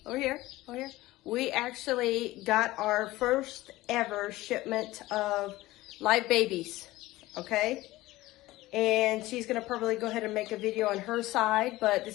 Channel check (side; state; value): right; quieter; 18.0 dB